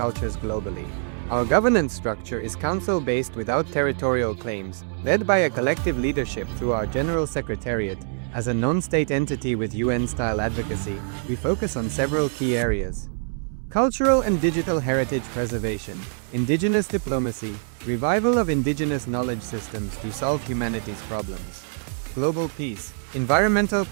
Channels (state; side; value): silent; left; 62 dB below the other